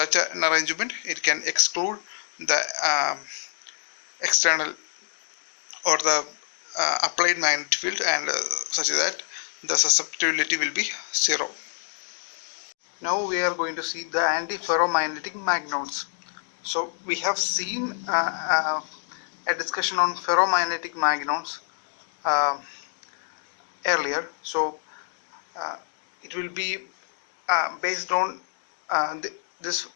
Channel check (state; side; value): silent; right; digital silence